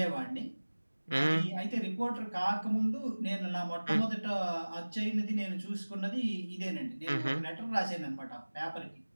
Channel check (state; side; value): inverted; both; correlation -1.00